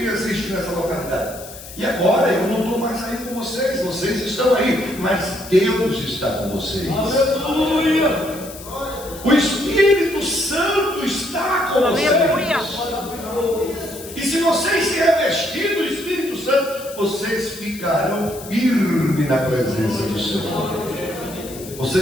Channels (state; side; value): noise; left; hiss, 15 dB below the sound